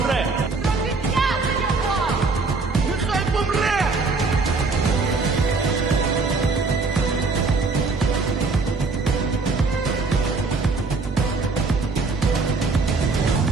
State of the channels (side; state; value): left; quieter; 4.0 dB